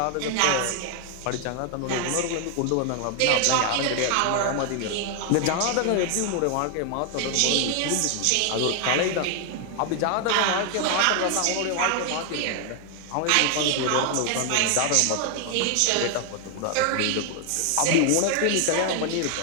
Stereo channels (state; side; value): different; both; correlation 0.00